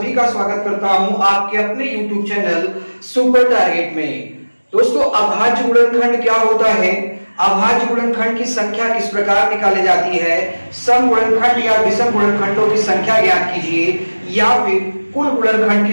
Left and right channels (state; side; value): inverted; both; correlation -1.00